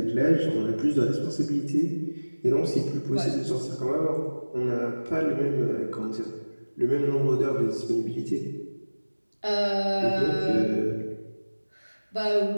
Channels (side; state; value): both; inverted; correlation -1.00